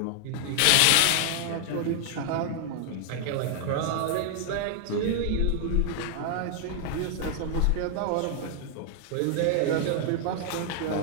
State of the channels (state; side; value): different; both; correlation 0.00